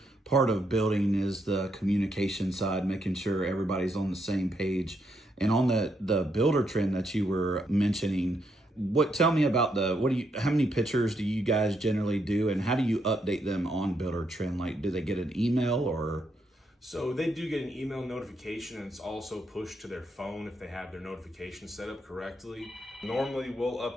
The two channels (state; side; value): normal; both; correlation 0.78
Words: part of building is the communication side, making sure everybody's on the same page. And on the builder trend that you were mentioning, tell me about how many pictures do you guys generally do, and how do you update them on builder trend? Like, do they get an email or? So they do get an email notification, and it's also pushed to their phone if they have their notifications set up correctly. Normally we'll